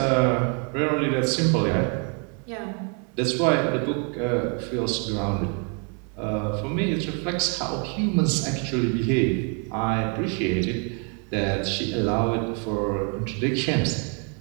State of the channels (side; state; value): left; quieter; 38.4 dB